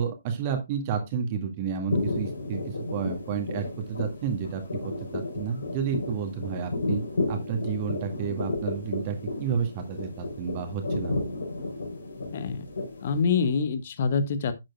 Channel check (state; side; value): inverted; both; correlation -0.53